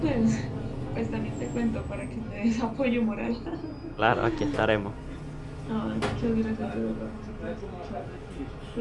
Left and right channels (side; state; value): both; identical; correlation 1.00